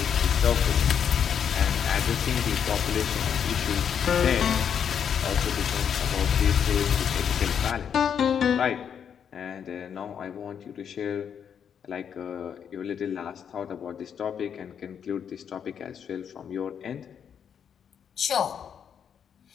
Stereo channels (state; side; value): quieter; right; 7.9 dB